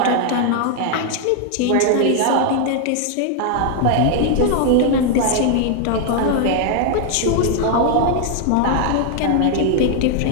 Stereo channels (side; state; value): both; different; correlation 0.00